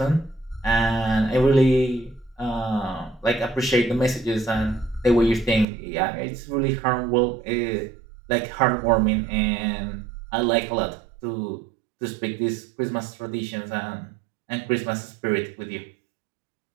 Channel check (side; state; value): left; drops out; at 5.7 s